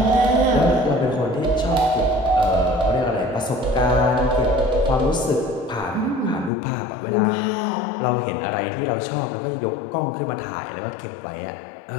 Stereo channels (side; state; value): right; drops out; at 6.5 s